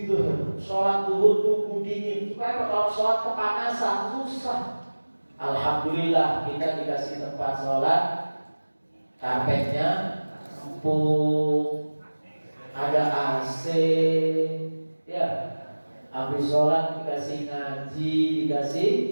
sholat duhur tunggu dingin. Supaya kalau sholat kepanasan susah. Alhamdulillah kita dikasih tempat sholat, karpetnya empuk, ada AC, ya. Habis sholat dikasih ngaji, dikasih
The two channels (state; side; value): inverted; both; correlation -1.00